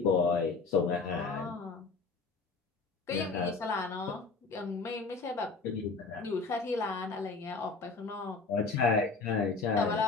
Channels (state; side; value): quieter; right; 4.3 dB